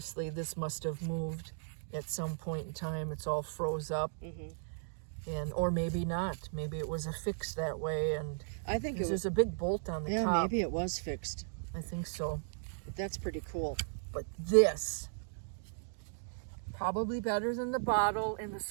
this must have moved at some point in time. It's all froze up. Or maybe not. Maybe it was affixed that way. And I think there's a big bolt on the top. Yeah, maybe it was fixed. I think so. But that's pretty cool. But this, probably better than the bottle and the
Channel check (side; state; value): left; silent; digital silence